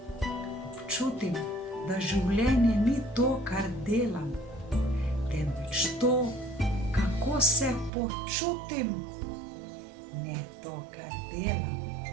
Občutim, da življenje ni to, kar delam, temveč to, kako se počutim. Ne to, kar delam,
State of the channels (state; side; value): drops out; left; at 7.9 s